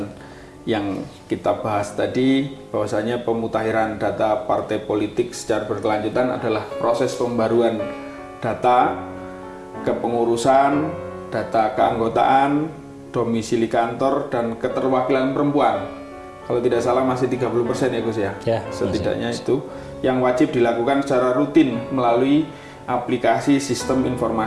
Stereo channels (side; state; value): both; identical; correlation 1.00